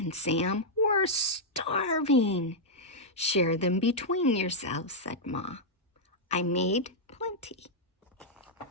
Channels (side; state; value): both; normal; correlation -0.06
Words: Sam. We're starving. Share them between yourselves, said Ma. I made plenty.